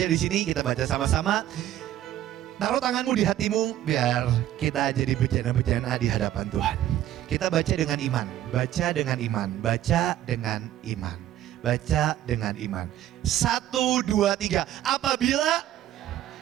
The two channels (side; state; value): left; quieter; 12.7 dB